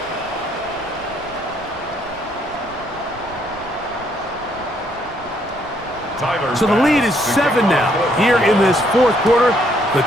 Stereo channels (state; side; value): noise; right; rumble, 23 dB below the sound